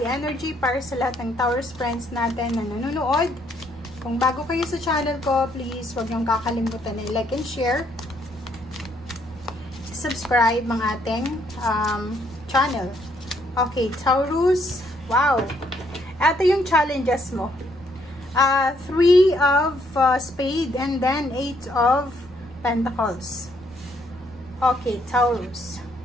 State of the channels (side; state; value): right; noise; rumble, 22 dB below the sound